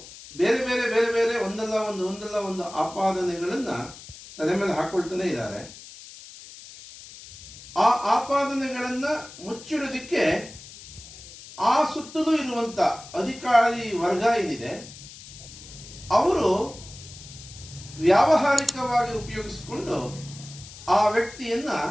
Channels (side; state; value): left; noise; hiss, 17 dB below the sound